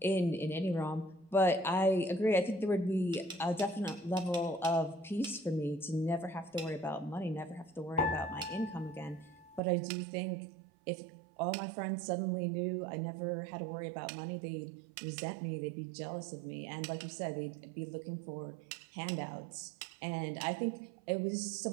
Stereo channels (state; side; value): drops out; left; at 9.6 s